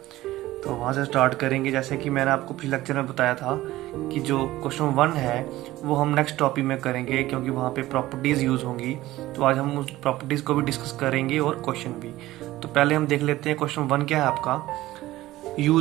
तो वहाँ से स्टार्ट करेंगे। जैसे कि मैंने आपको पिछले लेक्चर में बताया था कि जो क्वेश्चन 1 है वो हम नेक्स्ट टॉपिक में करेंगे, क्योंकि वहाँ पे प्रॉपर्टीज़ यूज़ होंगी। तो आज हम उस प्रॉपर्टीज़ को भी डिस्कस करेंगे और क्वेश्चन भी। तो पहले हम देख लेते हैं क्वेश्चन 1 क्या है आपका।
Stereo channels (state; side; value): quieter; left; 16.5 dB